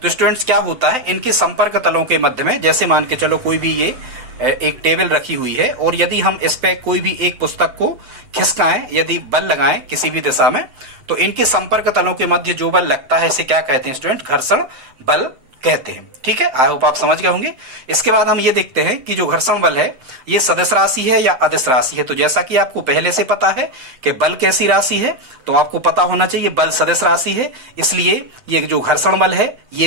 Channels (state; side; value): late; left; 7.8 ms